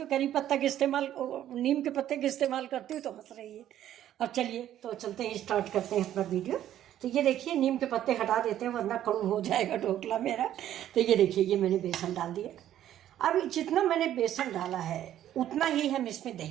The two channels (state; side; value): quieter; left; 11.8 dB